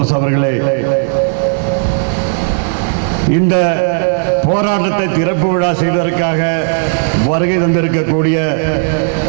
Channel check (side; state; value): left; silent; digital silence